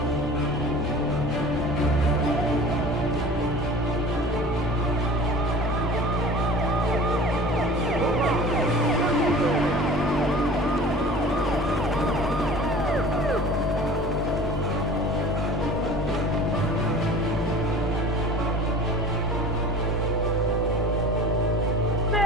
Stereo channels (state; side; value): normal; both; correlation 0.42